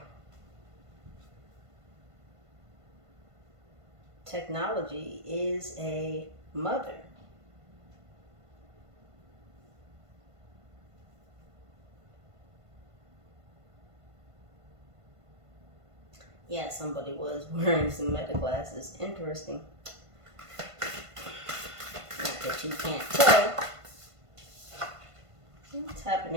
Technology is a mother. Yeah, somebody was wearing some meta glasses. Interesting. Not that you can't tell. What's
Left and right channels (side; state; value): left; late; 1.5 ms